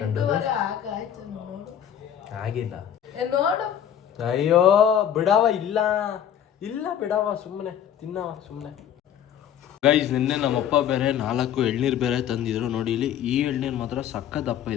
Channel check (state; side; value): quieter; right; 9.6 dB